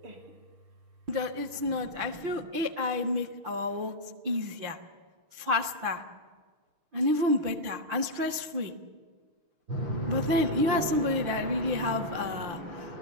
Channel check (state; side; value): late; left; 6.5 ms